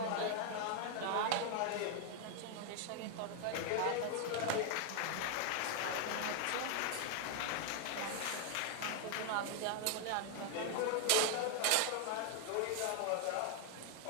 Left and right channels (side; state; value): both; different; correlation 0.00